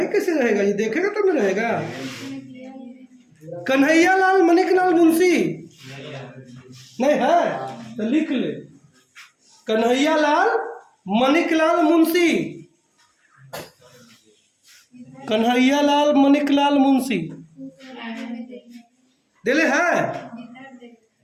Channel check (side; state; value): both; identical; correlation 1.00